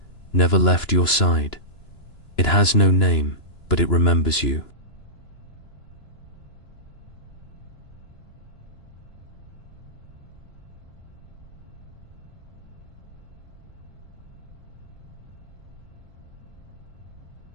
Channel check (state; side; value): late; right; 2.9 ms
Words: never left your side. It has no name, but it remembers you.